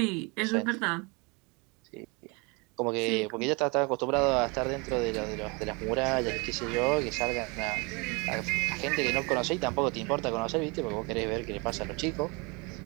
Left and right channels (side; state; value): left; quieter; 29.1 dB